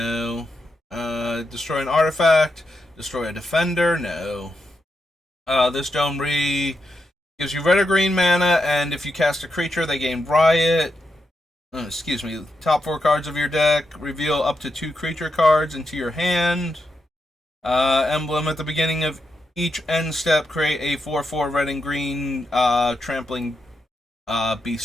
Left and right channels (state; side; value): normal; both; correlation 0.85